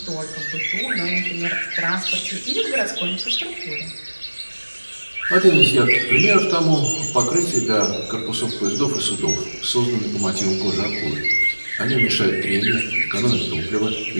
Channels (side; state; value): both; inverted; correlation -1.00